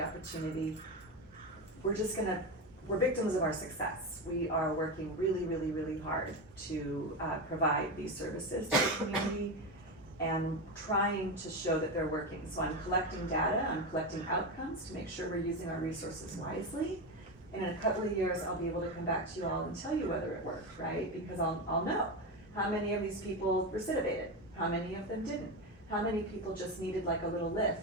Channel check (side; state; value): both; normal; correlation 0.16